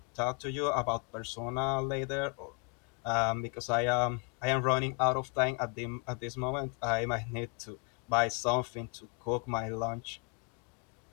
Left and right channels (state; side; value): quieter; right; 33.4 dB